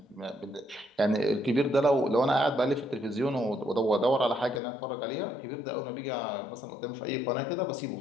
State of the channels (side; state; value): right; drops out; at 4.6 s